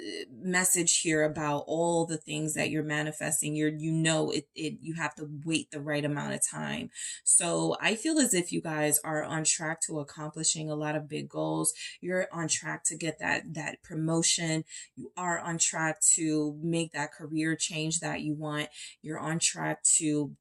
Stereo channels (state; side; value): identical; both; correlation 1.00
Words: here about all the things that you're manifesting. You have to wait the right amount of time. So I feel as if you guys are on track to accomplishing a lot of big goals. You're on track to get that promotion. You are on track to make that career change that you want. You're on track to